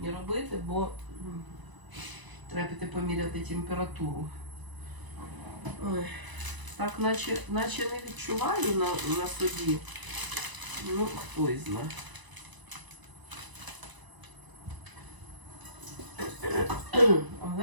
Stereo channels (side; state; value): left; late; 1.0 ms